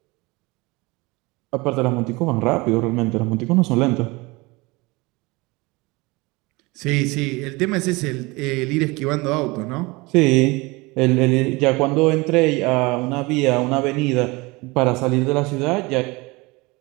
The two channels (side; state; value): left; quieter; 24.1 dB